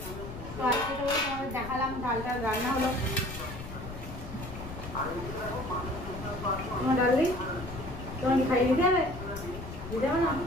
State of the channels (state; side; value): noise; left; rumble, 10 dB below the sound